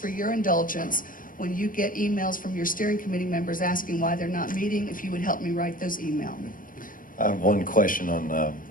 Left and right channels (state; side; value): late; right; 0.40 ms